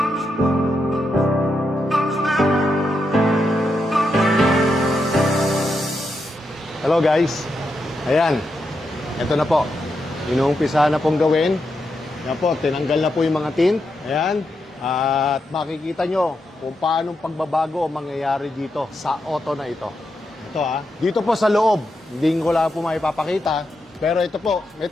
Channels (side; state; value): both; normal; correlation 0.84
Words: Hello guys. Ayan. Ito na po. Inuumpisa na pong gawin. Ayan po, tinanggal na po yung mga tint. Ayan. At makikita nyo kung paano pagbabago ang mangyayari dito sa auto na ito. Ito dito po sa loob. Hindi ko lang po maipapakita. Pero ito po, may